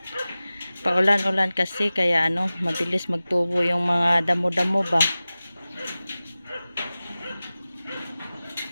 Paulan-ulan kasi kaya mabilis magtubo yung mga damo-damo ba.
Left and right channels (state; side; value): inverted; both; correlation -0.97